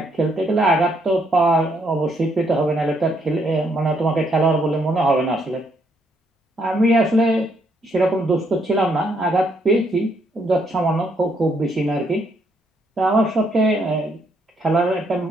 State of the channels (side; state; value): both; normal; correlation 0.72